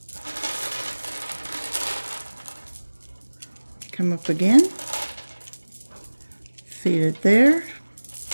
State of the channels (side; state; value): both; inverted; correlation -1.00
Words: Come up again. Feed it there.